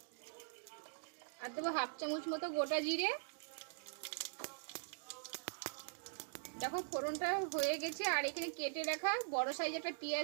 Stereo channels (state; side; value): silent; left; digital silence